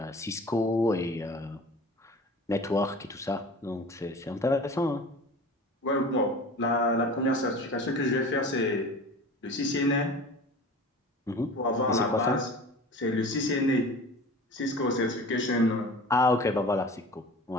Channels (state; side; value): normal; both; correlation 0.39